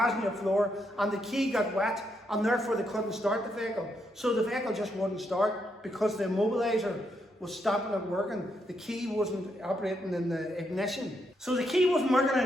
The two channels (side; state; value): both; normal; correlation 0.79